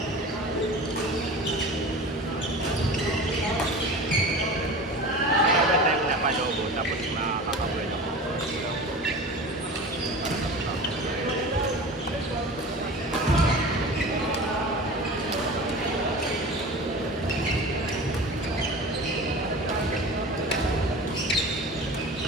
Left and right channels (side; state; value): both; normal; correlation 0.35